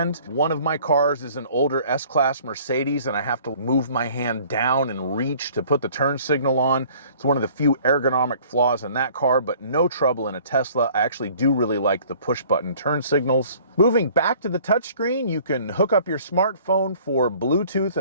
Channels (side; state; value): both; inverted; correlation -0.53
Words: One of my cars is an older S-Class Mercedes, and I have to move my hand down and reach to put the turn signal on. It's one of the few ergonomic flaws in that car, but no trouble in a Tesla. I actually do really like the push-button turn signals. Moving back to the touchscreen, you can hook up your smartphone for Bluetooth